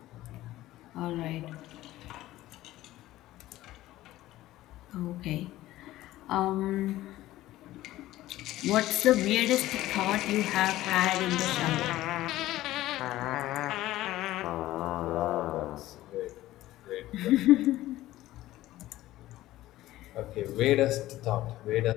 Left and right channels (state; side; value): quieter; right; 15.7 dB